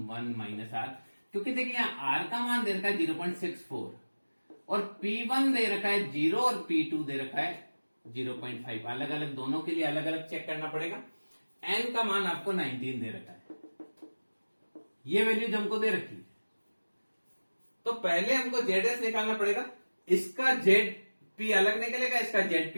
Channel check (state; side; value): inverted; both; correlation -1.00